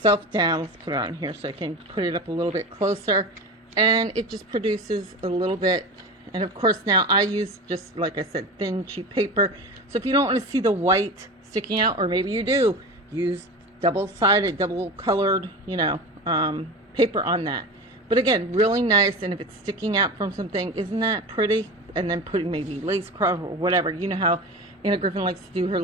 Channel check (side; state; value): both; normal; correlation 0.29